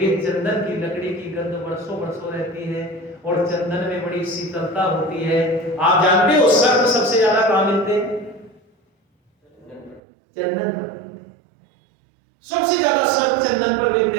चंदन की लकड़ी की गंध वर्षों वर्षों रहती है और चंदन में बड़ी शीतलता होती है। आप जानते हो सर्प सबसे ज्यादा कहां मिलते हैं? चंदन पर मिलते हैं। सबसे ज्यादा सर्प चंदन पर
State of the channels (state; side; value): drops out; left; at 10.0 s